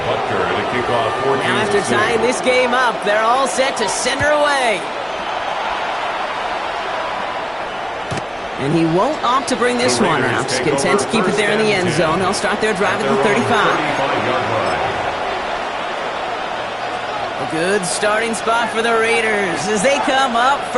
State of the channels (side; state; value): both; identical; correlation 1.00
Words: Butker to kick off 14. Now after tying this game up, they're all set to send her away. And he won't opt to bring this one out. Content to keep it there in the end zone. They'll start their drive at the 35. A good starting spot for the Raiders as they come up